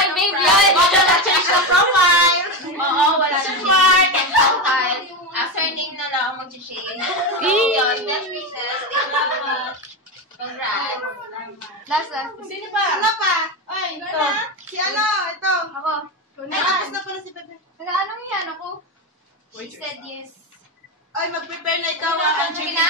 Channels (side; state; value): both; normal; correlation 0.15